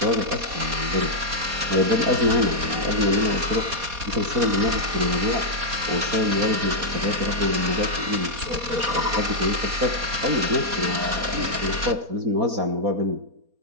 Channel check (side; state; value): left; late; 4.2 ms